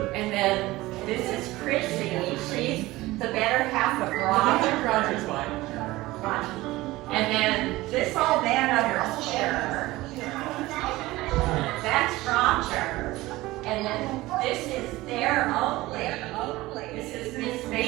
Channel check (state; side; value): quieter; left; 18.7 dB